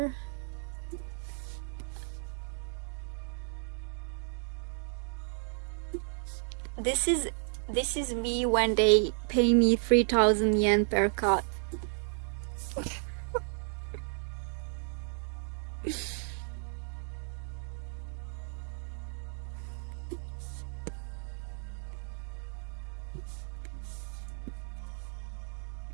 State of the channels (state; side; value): silent; left; 56 dB below the other